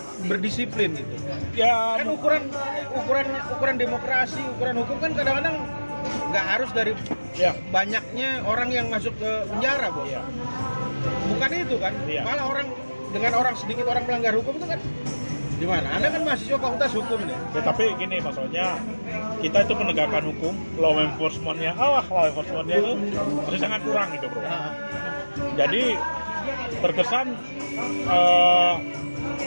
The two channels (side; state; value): both; inverted; correlation -1.00